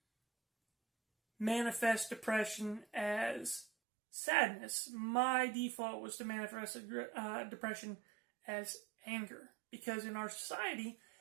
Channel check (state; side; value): drops out; left; at 3.7 s